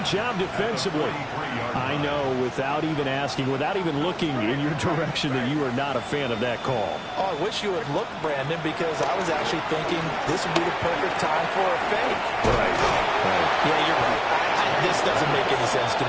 job defensively. I know, without even asking, without even looking in your direction, that you are not a fan of that call. Oh, I wish you would look, Brandon, because I was actually thinking this would be the perfect time for a fake. Right. Yeah, you're right. This doesn't make any sense to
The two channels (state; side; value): identical; both; correlation 1.00